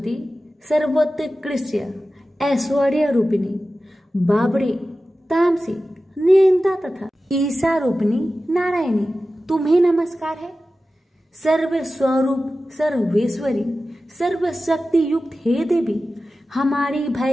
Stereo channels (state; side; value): normal; both; correlation 0.94